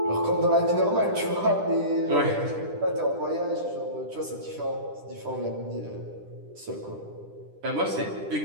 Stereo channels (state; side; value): late; left; 10 ms